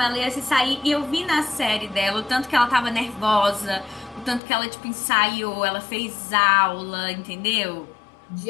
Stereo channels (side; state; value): right; drops out; at 4.4 s